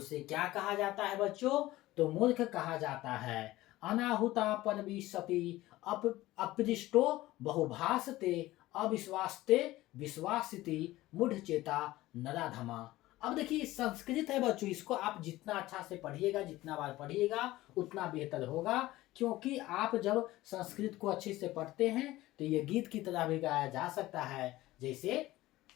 क्या कहा जाता है बच्चों? तो मूर्ख कहा जाता है। अनाहुता परविशति अपृष्टो बहुभासते अविश्वासते विश्वासिति मूढ़ चेता नराधमा। अब देखिए संस्कृत है बच्चों, इसको आप जितना अच्छा से पढ़िएगा, जितना बार पढ़िएगा उतना बेहतर होगा, क्योंकि आप जब संस्कृत को अच्छे से पढ़ते हैं तो ये गीत की तरह भी गाया जा सकता है। जैसे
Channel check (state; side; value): quieter; right; 17.2 dB